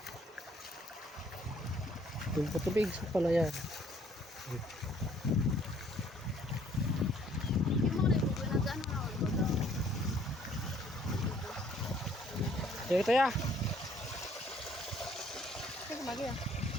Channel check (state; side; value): normal; both; correlation 0.62